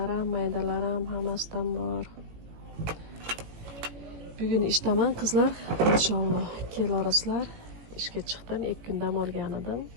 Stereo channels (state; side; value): late; left; 18 ms